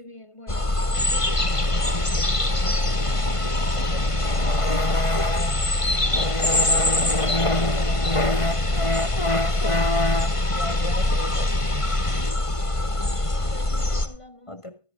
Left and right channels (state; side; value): late; right; 1.5 ms